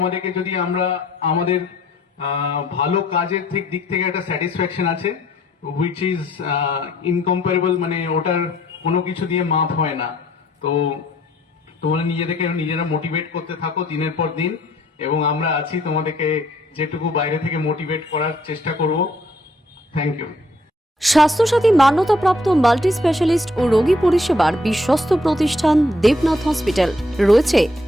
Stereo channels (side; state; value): both; normal; correlation 0.65